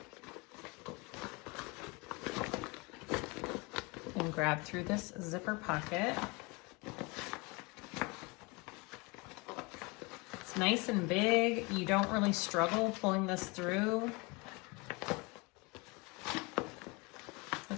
And grab through this zipper pocket. It's nice and big. You don't really struggle pulling this through.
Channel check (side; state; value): right; quieter; 27.5 dB